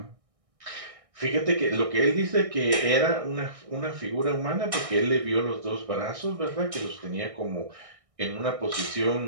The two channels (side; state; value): left; late; 1.6 ms